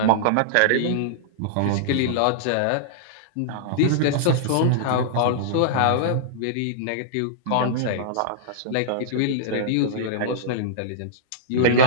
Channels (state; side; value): different; both; correlation -0.02